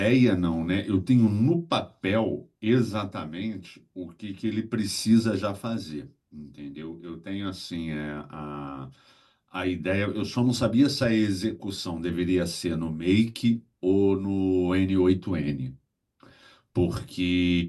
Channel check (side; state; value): both; identical; correlation 1.00